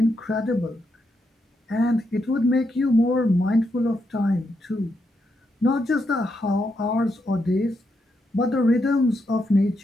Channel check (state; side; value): normal; both; correlation 0.81